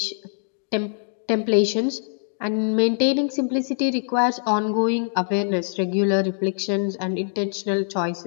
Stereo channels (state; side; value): silent; right; digital silence